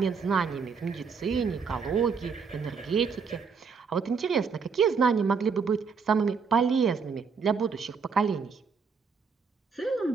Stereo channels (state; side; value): quieter; left; 5.6 dB